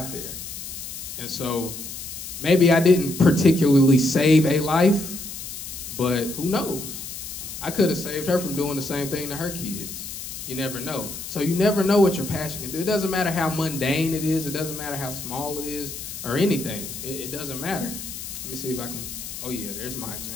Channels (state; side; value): noise; left; hiss, 9 dB below the sound